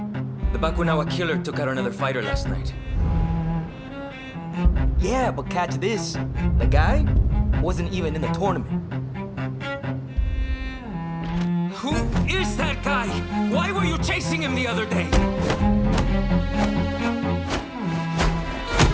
The Bakunawa Killer took out another fighter last night. Yeah, but catch this. The guy wasn't even in the tournament. Who is that guy? Why were you chasing him the other day?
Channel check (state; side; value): identical; both; correlation 1.00